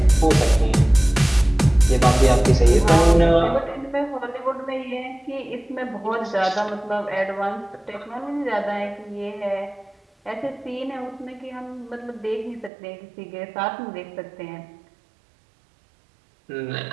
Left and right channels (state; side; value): drops out; left; at 12.7 s